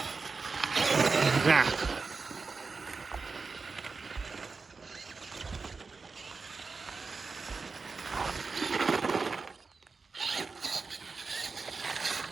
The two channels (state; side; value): quieter; left; 4.5 dB